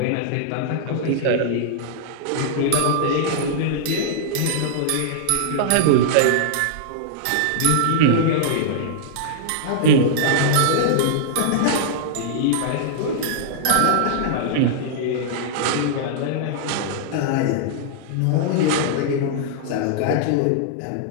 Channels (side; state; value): both; different; correlation -0.01